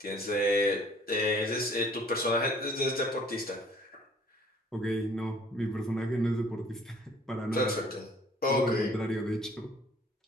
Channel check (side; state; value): both; normal; correlation 0.56